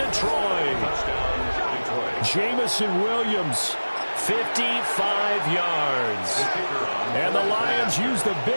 Jamison Williams, 55 yards. And the Lions use the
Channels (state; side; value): inverted; both; correlation -1.00